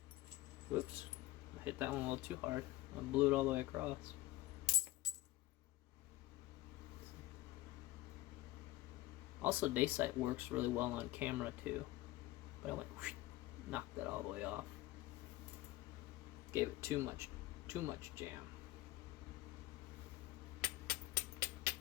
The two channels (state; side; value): quieter; right; 16.6 dB